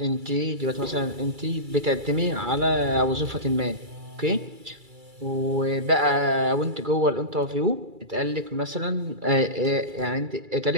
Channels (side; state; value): left; late; 2.3 ms